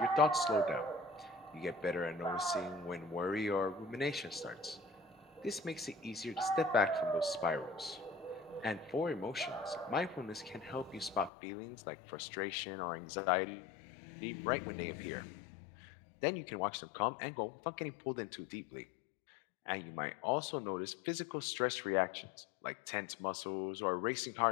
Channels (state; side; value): drops out; right; at 11.3 s